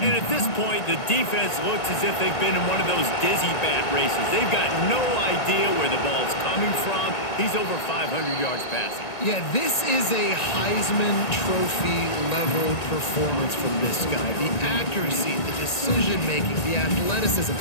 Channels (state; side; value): late; right; 1.9 ms